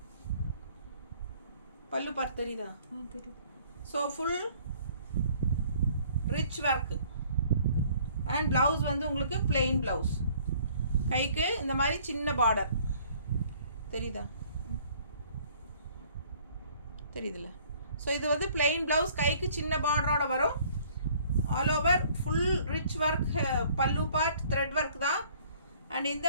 பல்லு பார்ட் தெரியுதா? தெரியும். So full rich work. And blouse வந்து உங்களுக்கு பிளெயின் ப்ளவுஸ். கைக்கு இந்த மாதிரி சின்ன பார்டர் தெரியுதா? தெரியுதுல்ல? ஸோ இது வந்து பிளெயின் ப்ளவுஸ், கைக்கு சின்ன பார்டரோட வரும். All over full rich work. பல்லு பார்ட் த்ரெட் ஒர்க் தான். அண்ட் இந்த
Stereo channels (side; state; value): both; inverted; correlation -0.57